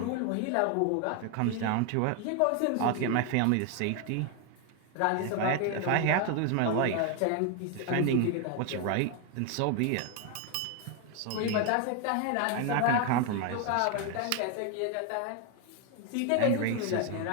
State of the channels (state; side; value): different; both; correlation 0.01